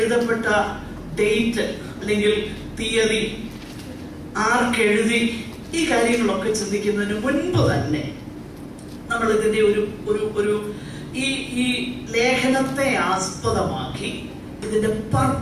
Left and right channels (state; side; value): identical; both; correlation 1.00